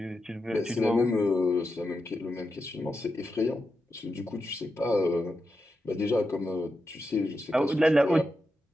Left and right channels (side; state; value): both; normal; correlation 0.88